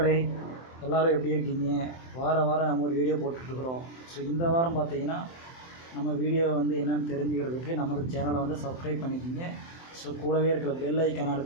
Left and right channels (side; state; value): right; late; 23 ms